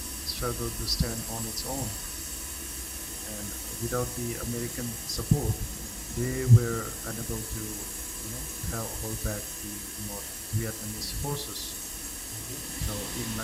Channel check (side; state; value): both; identical; correlation 1.00